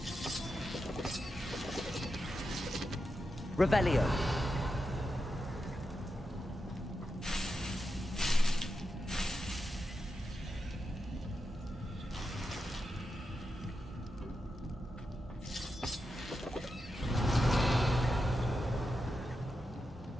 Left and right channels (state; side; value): normal; both; correlation 0.88